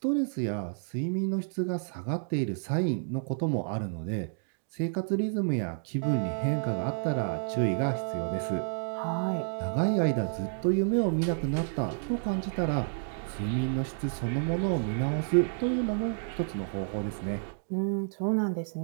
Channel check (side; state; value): left; silent; digital silence